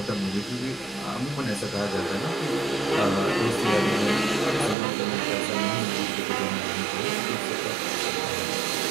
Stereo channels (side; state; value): left; drops out; at 4.8 s